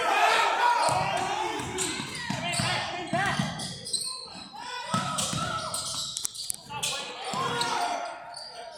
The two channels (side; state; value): both; identical; correlation 1.00